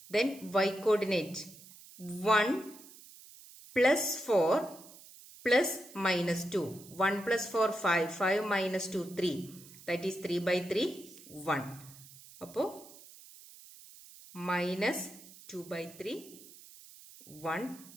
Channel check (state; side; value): noise; right; hiss, 20 dB below the sound